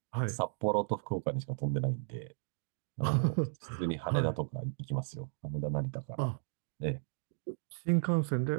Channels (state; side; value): silent; left; digital silence